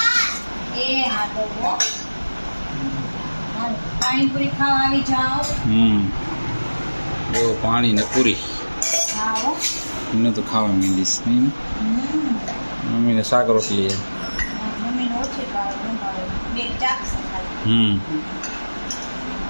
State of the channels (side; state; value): both; inverted; correlation -1.00